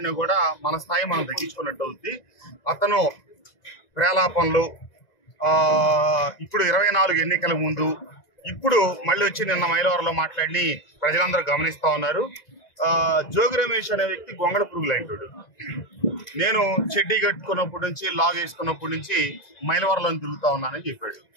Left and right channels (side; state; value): right; late; 2.0 ms